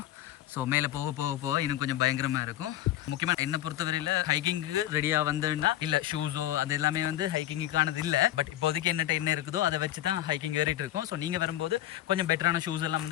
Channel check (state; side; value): quieter; right; 13.5 dB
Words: ஸோ மேலே போக போக போக இன்னும் கொஞ்சம் பயங்கரமாக இருக்கும். முக்கியமாக என்னை பொறுத்தவரையில் ஹைக்கிங்க்கு ரெடியாக வந்தேன்னா இல்லை ஷூஸோ அது எல்லாமே வந்து ஹைக்கிங்குக்கானது இல்லை. பட் இப்போதைக்கு என்னட்ட என்ன இருக்குதோ அதை வச்சு தான் ஹைக்கிங் ஏறிட்டு இருக்கோம். ஸோ நீங்கள் வரும்போது கொஞ்சம் பெட்டரான ஷூஸ் எல்லாம்